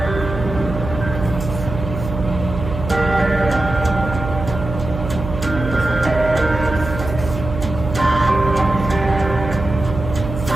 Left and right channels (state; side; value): noise; right; hum, 8 dB below the sound